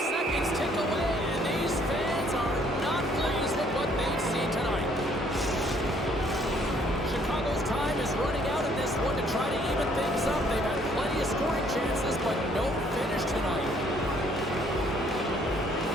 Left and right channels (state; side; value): normal; both; correlation 0.63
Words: seconds tick away, and these fans are not pleased with what they've seen tonight. Chicago's time is running out in this one to try to even things up. They've had plenty of scoring chances, but no finish tonight.